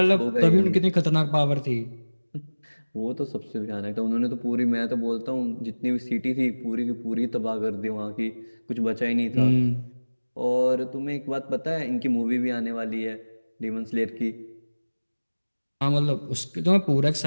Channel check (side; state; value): both; inverted; correlation -1.00